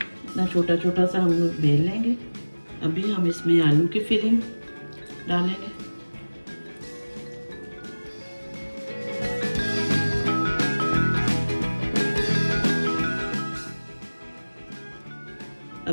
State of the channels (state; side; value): inverted; both; correlation -1.00